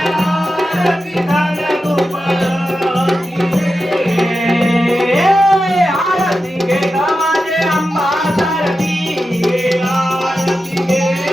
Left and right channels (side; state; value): both; normal; correlation 0.91